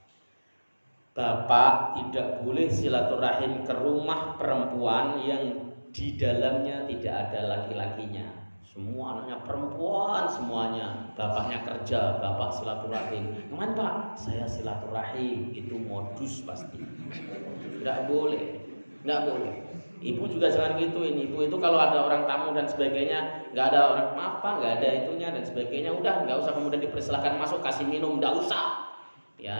Bapak tidak boleh silaturahim ke rumah perempuan yang di dalamnya tidak ada laki-lakinya. Semua anaknya perempuan semuanya. Bapaknya kerja, bapak silaturahim. Kemana Pak? Saya silaturahim. Itu modus pasti. Nggak boleh. Nggak boleh. Ibu juga jangan gituin. Ibu itu kalau ada orang tamu dan sebagainya, nggak ada orang apa, nggak ada itunya dan sebagainya, udah nggak usah kemudian dipersilahkan masuk, kasih minum, nggak usah. Ya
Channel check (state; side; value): inverted; both; correlation -1.00